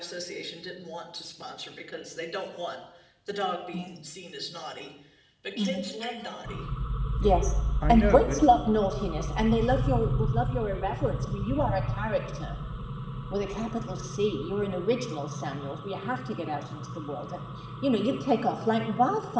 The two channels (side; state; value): both; identical; correlation 1.00